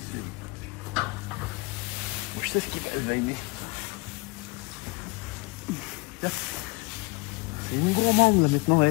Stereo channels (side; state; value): right; quieter; 25.9 dB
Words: cils. Je sais ce qu'il va aimer. C'est une gourmande là maintenant,